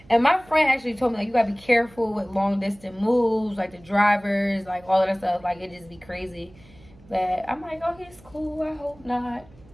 and my friend actually told me, like, you gotta be careful with long distance moves, like the drivers, like all of that stuff. Like, it just be crazy. But I'm like, okay, it's cool. I hope not.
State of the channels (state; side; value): noise; right; hum, 25 dB below the sound